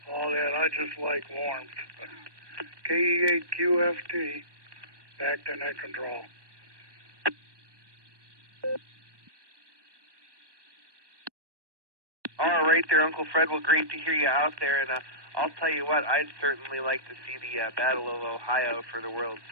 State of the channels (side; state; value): left; late; 1.2 ms